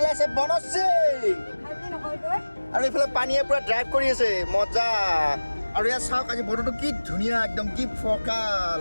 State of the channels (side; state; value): both; inverted; correlation -1.00